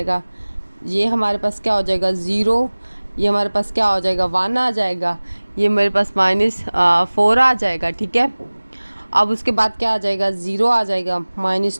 ये हमारे पास क्या हो जाएगा 0, ये हमारे पास क्या हो जाएगा 1 आ जाएगा, ये मेरे पास -4 आ जाएगा, ठीक है। अब उसके बाद क्या आ जाएगा, 0 आ जाएगा,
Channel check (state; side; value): inverted; both; correlation -1.00